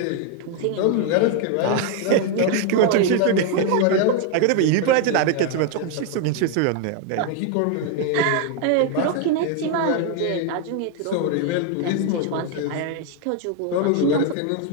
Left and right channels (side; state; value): both; different; correlation 0.01